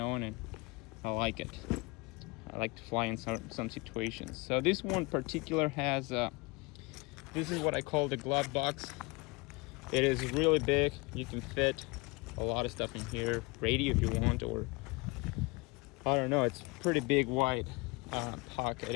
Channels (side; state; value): right; quieter; 26.1 dB